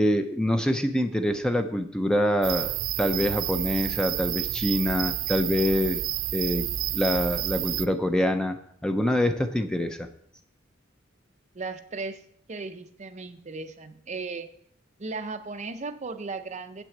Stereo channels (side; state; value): both; normal; correlation 0.73